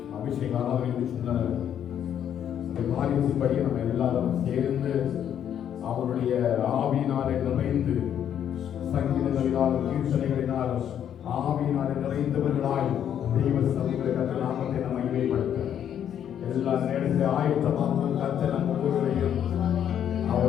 அபிஷேக ஆராதனை சொன்ன காரியத்தின்படி நம்ம எல்லாரும் சேர்ந்து அவருடைய ஆவியினாலே நிறைந்து சங்கீதங்களினாலும் கீர்த்தனைகளினாலும் ஆவியினாலே நிறைந்தவர்களாய் தெய்வ சமூகத்தை நாமத்தை நம்ம மகிமைப்படுத்த எல்லா நேரத்தில் ஆயத்தமாக கர்த்தர் நம் ஒவ்வொருவரையும்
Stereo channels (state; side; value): quieter; right; 9.5 dB